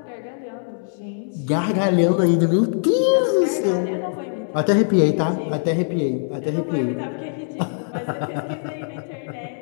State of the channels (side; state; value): right; silent; 64 dB below the other